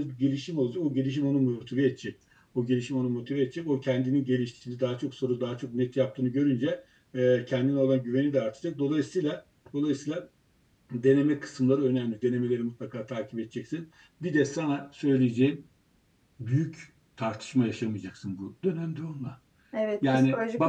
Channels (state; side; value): identical; both; correlation 1.00